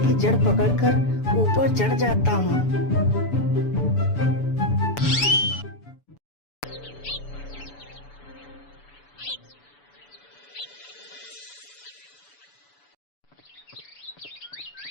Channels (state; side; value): late; right; 7.0 ms